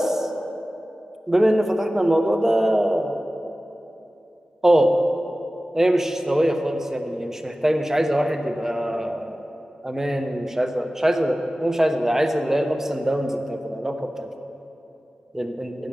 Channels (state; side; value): normal; both; correlation 0.96